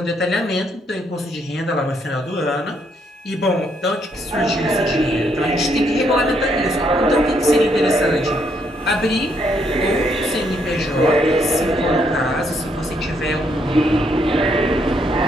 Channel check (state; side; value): normal; both; correlation 0.73